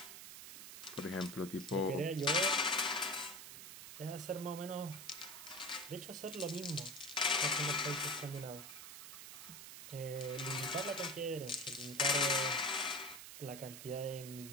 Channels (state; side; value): noise; right; hiss, 11 dB below the sound